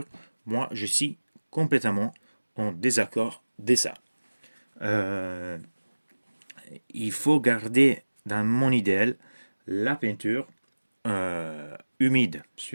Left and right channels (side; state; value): both; inverted; correlation -1.00